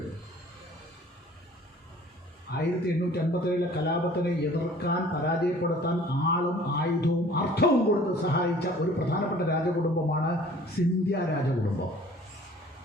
1857 കലാപത്തിനെ എതിർക്കാൻ, പരാജയപ്പെടുത്താൻ ആളും ആയുധവും അർത്ഥവും കൊടുത്ത് സഹായിച്ച ഒരു പ്രധാനപ്പെട്ട രാജകുടുംബമാണ് സിന്ധ്യ രാജകുടുംബം.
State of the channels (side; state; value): both; normal; correlation 0.51